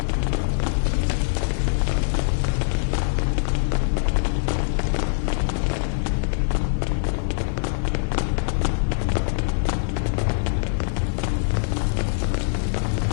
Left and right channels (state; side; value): silent; right; digital silence